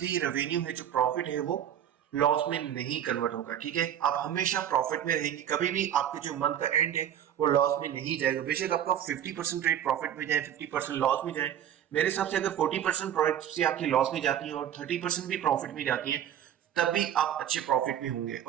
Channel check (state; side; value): quieter; left; 10.3 dB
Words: रेवेन्यू है, जो प्रॉफिट है, वो लॉस में नहीं कन्वर्ट होगा. ठीक है, आप हमेशा प्रॉफिट में रहेंगे. कभी भी आपके जो मंथ का एंड है वो लॉस में नहीं जाएगा. बेशक आपका 50% रेट प्रॉफिट में जाए, 50% लॉस में जाए. मेरे हिसाब से अगर 40% प्रॉफिट से आपकी लॉस में जाती है और 30% भी प्रॉफिट में जाती है, तब भी आप अच्छे प्रॉफिट में होंगे.